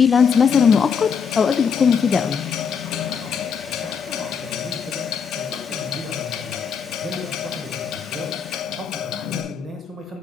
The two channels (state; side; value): quieter; right; 6.5 dB